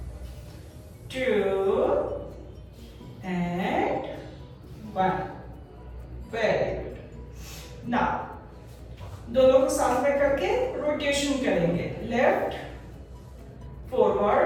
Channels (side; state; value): both; identical; correlation 1.00